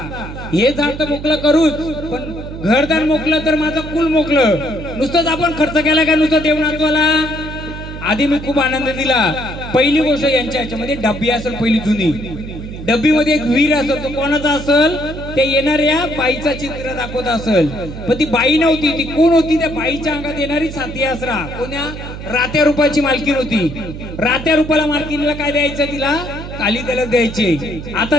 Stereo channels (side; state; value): right; noise; hum, 10 dB below the sound